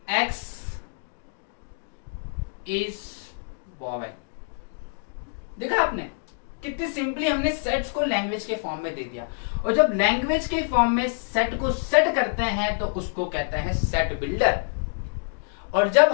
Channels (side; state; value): right; silent; digital silence